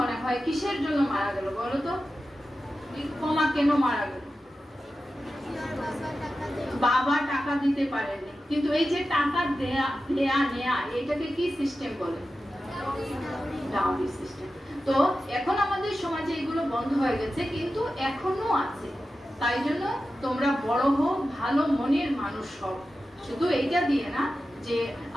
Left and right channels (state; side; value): normal; both; correlation 0.93